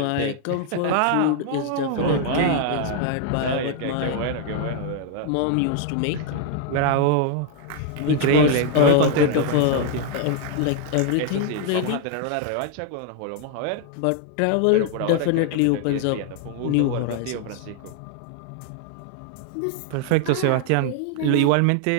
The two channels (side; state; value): both; different; correlation 0.00